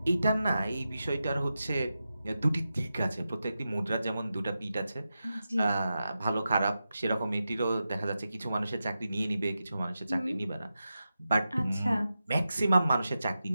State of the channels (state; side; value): inverted; both; correlation -0.91